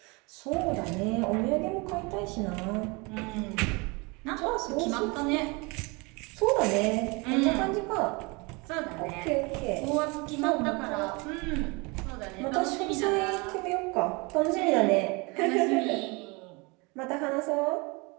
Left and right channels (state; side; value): quieter; left; 27.9 dB